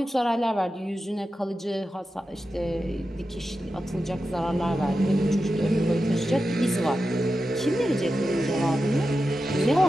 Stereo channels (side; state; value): both; normal; correlation 0.91